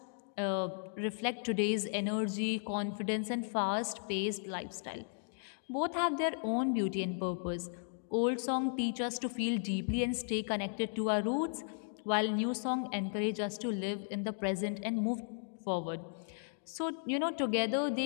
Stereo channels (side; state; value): right; silent; digital silence